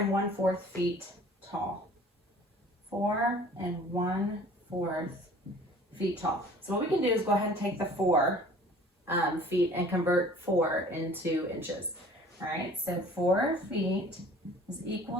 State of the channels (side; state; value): both; normal; correlation 0.49